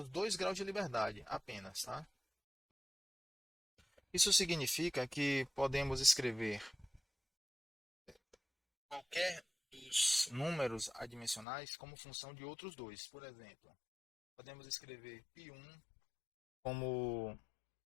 2 graus de liberdade apenas. Tá? Isso significa que podemos escrever qualquer dos números adimensionais como função de outros dois. Por exemplo, podemos escrever π1 como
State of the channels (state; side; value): drops out; right; at 11.5 s